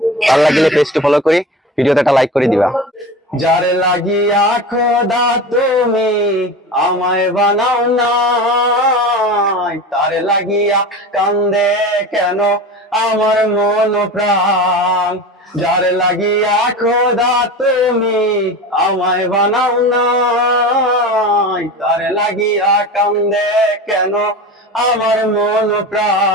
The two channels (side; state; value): both; normal; correlation 0.30